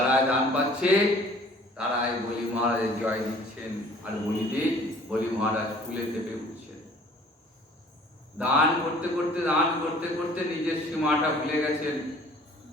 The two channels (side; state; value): both; normal; correlation 0.52